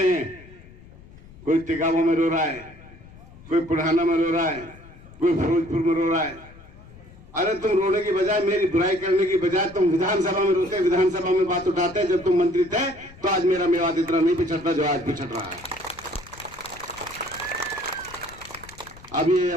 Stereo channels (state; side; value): noise; left; rumble, 21 dB below the sound